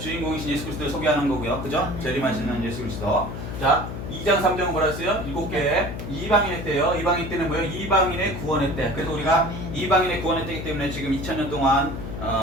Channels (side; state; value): left; noise; hum, 7 dB below the sound